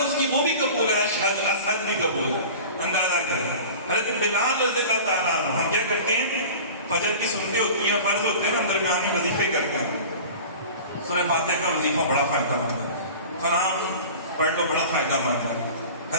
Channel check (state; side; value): inverted; both; correlation -0.38